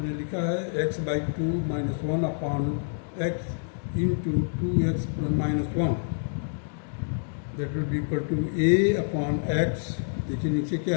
लिखा है x/2 minus 1 upon x into 2x minus 1, that will be equal to a upon x। देखिए नीचे क्या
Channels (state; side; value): silent; right; digital silence